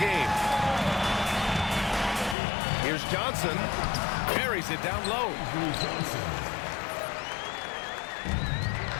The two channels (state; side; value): drops out; right; at 2.4 s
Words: Here's Johnson. Carries it down low.